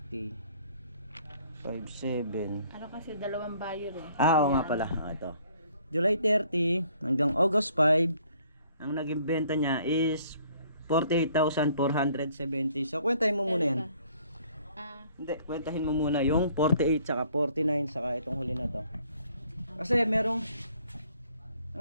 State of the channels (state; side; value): inverted; both; correlation -0.61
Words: 57. ano kasi dalawang buyer eh. Oo nga pala. Ito. July 30 hanggang August 5, ang naging benta niya is 48,470. So, kwentahin mo muna yan. Hindi, kwentahin mo muna yung 48 saka 49 saka itong huli na to. Kasi merong